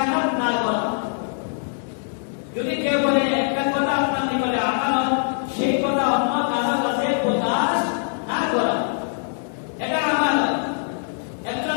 না করা। যদি কেউ বলে একটা কথা আপনার নিকটে আমানত, সেই কথা অন্য কারো কাছে প্রকাশ না করা, এটা আমানত। একজন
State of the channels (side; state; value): right; silent; digital silence